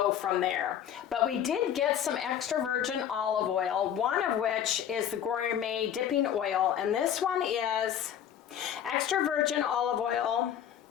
from there. But we did get some extra virgin olive oil, one of which is the gourmet dipping oil, and this one is extra virgin olive oil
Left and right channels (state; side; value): quieter; right; 9.7 dB